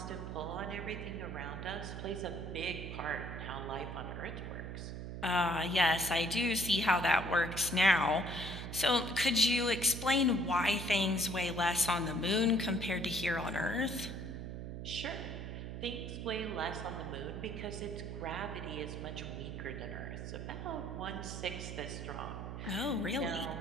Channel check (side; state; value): right; noise; hum, 7 dB below the sound